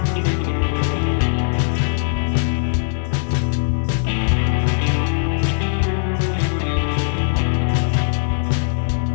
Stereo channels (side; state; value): right; silent; digital silence